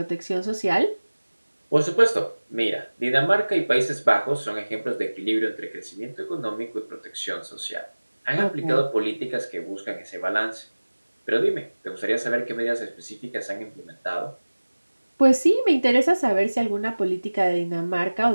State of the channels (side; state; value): both; inverted; correlation -1.00